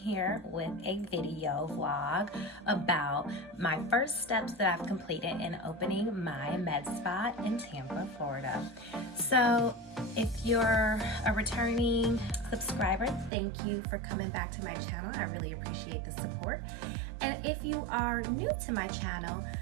with a video vlog about my first steps that I've completed in opening my med spa in Tampa, Florida. So if you're a returning subscriber, thank you for coming back to my channel. I really appreciate the support. And if you are new to my channel,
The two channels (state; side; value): drops out; left; at 13.3 s